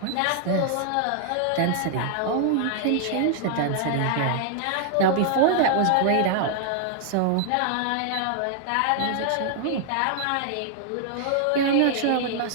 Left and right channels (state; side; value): different; both; correlation 0.00